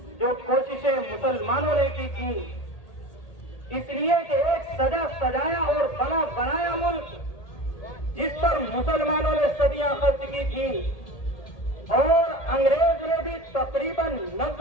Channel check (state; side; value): late; right; 1.8 ms